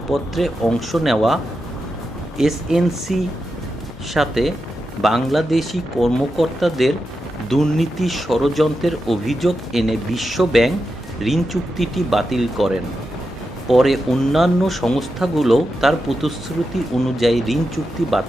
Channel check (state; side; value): normal; both; correlation 0.88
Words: অংশ নেওয়া এসএনসি সাথে বাংলাদেশি কর্মকর্তাদের দুর্নীতি ষড়যন্ত্রের অভিযোগ এনে বিশ্ব ব্যাংক ঋণ চুক্তিটি বাতিল করেন। পরে অন্যান্য সংস্থাগুলো তার প্রতিশ্রুতি অনুযায়ী ঋণ চুক্তি